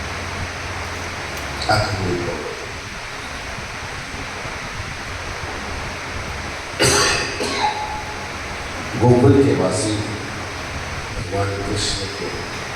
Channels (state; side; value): identical; both; correlation 1.00